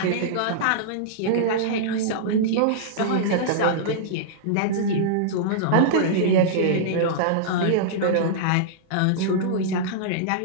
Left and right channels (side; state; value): both; different; correlation -0.02